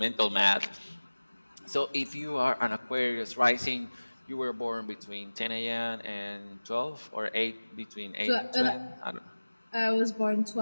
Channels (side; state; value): both; inverted; correlation -1.00